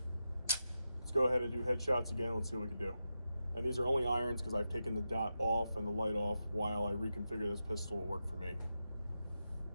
Let's go ahead and do headshots again, let's see what we can do. And these are only irons because I've taken the dot off and the light off while I reconfigure this pistol to work for me.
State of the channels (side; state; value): both; inverted; correlation -0.89